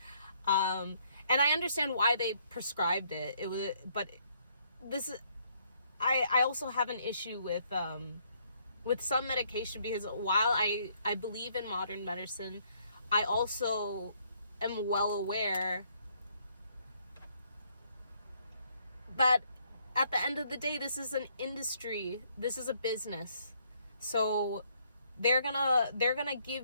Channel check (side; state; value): both; inverted; correlation -0.69